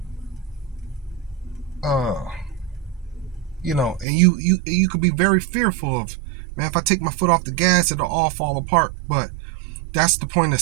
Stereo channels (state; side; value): drops out; left; at 4.0 s